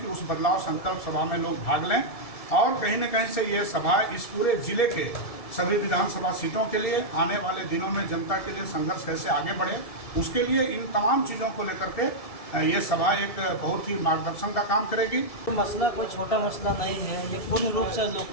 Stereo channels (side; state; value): right; late; 1.7 ms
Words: कि उस बदलाव संकल्प सभा में लोग भाग लें और कहीं न कहीं से ये सभा इस पूरे जिले के सभी विधानसभा सीटों के लिए आने वाले दिनों में जनता के लिए संघर्ष कैसे आगे बढ़े, उसके लिए इन तमाम चीज़ों को लेकर के ये सभा एक बहुत ही मार्गदर्शन का काम करेगी। मसला कोई छोटा मसला नहीं है, ये पूर्ण रूप से